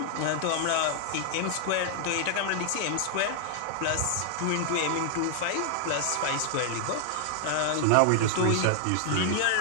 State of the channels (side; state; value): both; different; correlation 0.00